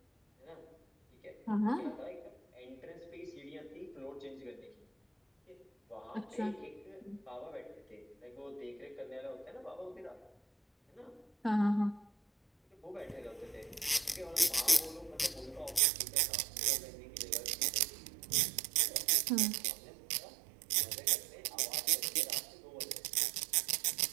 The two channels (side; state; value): left; drops out; at 15.8 s